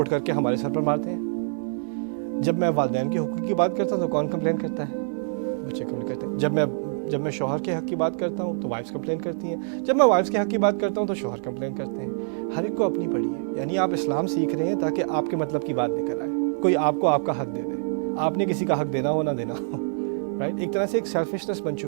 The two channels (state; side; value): silent; left; digital silence